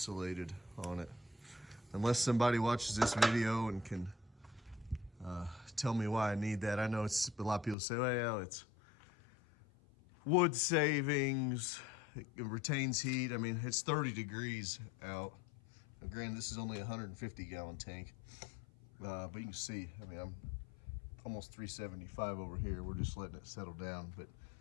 on it, unless somebody watches this video and can tell me why I need that. I know it's a lot of people say, well, it's wood savings, it retains heat. I mean, it's 30 degrees out. Now, granted, this is only a 150-gallon tank, but you can see, I mean, I'm almost 375 over here. We're just letting it settle down. But,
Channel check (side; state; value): right; drops out; at 7.8 s